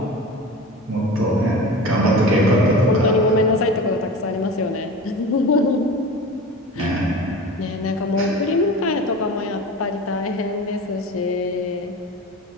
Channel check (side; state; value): both; normal; correlation 0.33